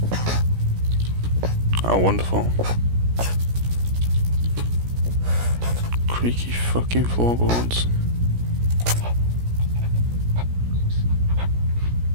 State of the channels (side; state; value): left; late; 17 ms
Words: Oh, wonderful. Creaky fucking floorboards.